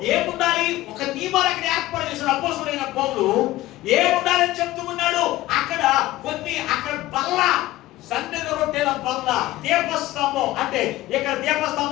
ఏముండాలి? ఒక నియమాలు అక్కడ ఏర్పాటు చేసిన అపొస్తలులైన పౌలు ఏముండాలని చెప్తూ ఉన్నాడు. అక్కడ బల్ల, సన్నిధి రొట్టెల బల్ల, దీపస్తంభం. అంటే ఇక్కడ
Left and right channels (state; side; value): quieter; right; 16.7 dB